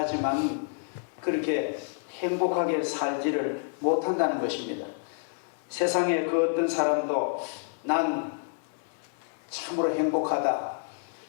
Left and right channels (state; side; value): silent; right; 59 dB below the other